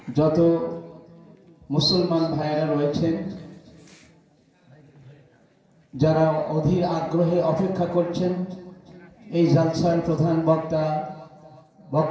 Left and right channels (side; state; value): both; identical; correlation 1.00